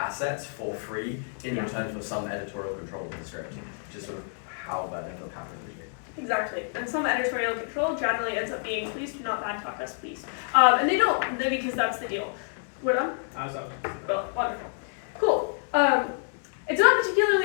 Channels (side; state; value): right; silent; 56 dB below the other